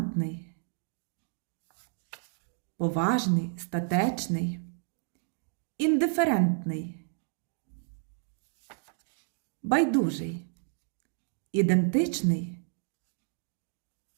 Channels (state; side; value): silent; left; digital silence